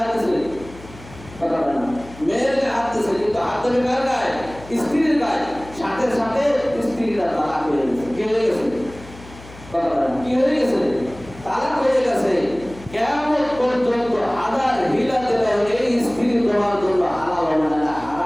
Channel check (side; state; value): left; noise; hum, 18 dB below the sound